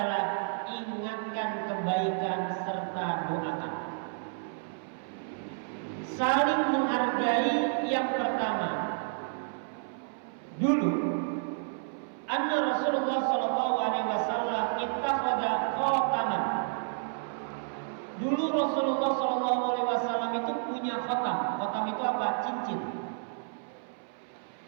ingatkan kebaikan serta doakan. Saling menghargai yang pertama. Dulu anna Rasulullah sallallahu alaihi wasallam ittakhadha khataman. Dulu Rasulullah sallallahu alaihi wasallam itu punya khatam. Khatam itu apa? Cincin.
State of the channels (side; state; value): left; silent; 57 dB below the other